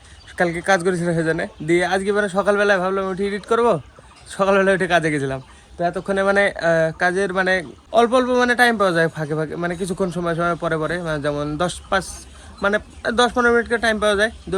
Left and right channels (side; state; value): both; identical; correlation 1.00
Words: কালকে কাজ করেছিল সেজন্য। দিয়ে আজকে মানে সকালবেলায় ভাবলাম উঠে এডিট করবো, সকালবেলায় উঠে কাজে গেছিলাম। তো এতক্ষণে মানে কাজের মানে অল্প অল্প মানে টাইম পাওয়া যায় ফাঁকে ফাঁকে, মানে কিছুক্ষণ সময় সময় পরে পরে, মানে যেমন 10-15 মিনিট করে টাইম পাওয়া যায়,